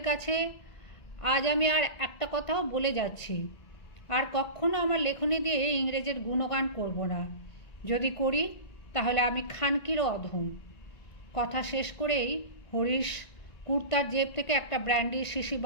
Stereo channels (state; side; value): late; right; 1.9 ms